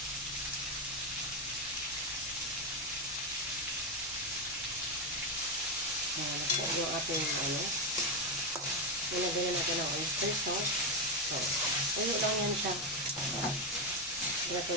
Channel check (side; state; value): left; noise; rumble, 28 dB below the sound